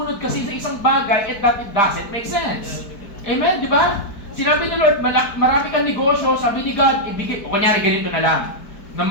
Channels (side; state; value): right; late; 4.6 ms